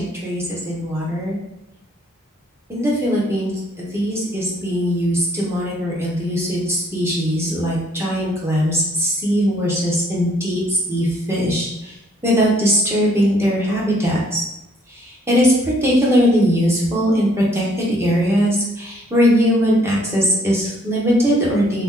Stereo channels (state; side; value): normal; both; correlation 0.64